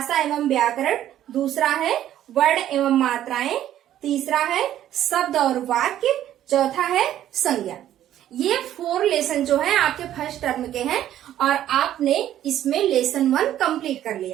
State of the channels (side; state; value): left; quieter; 11.9 dB